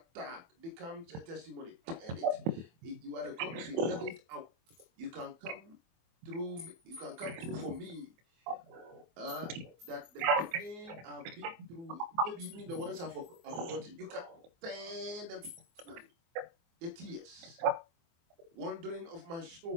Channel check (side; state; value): left; late; 24 ms